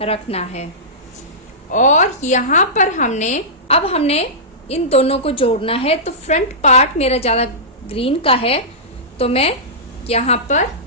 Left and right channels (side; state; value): both; normal; correlation -0.17